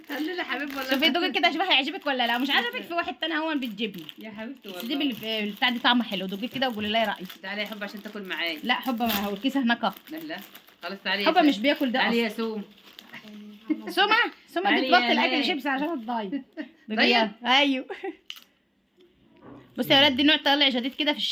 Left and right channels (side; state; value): both; identical; correlation 1.00